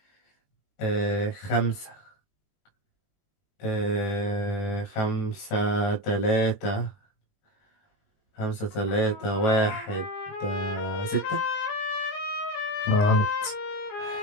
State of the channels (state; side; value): late; right; 20 ms